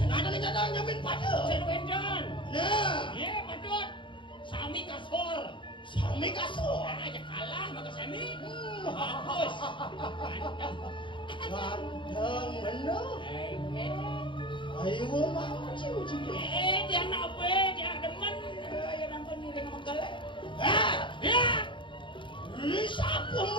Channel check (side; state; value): right; late; 0.24 ms